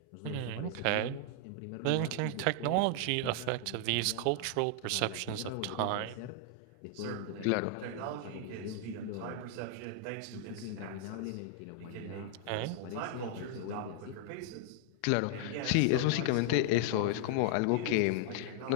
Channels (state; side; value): different; both; correlation 0.00